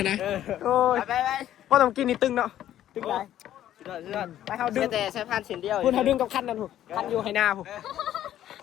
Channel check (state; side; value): quieter; right; 11.9 dB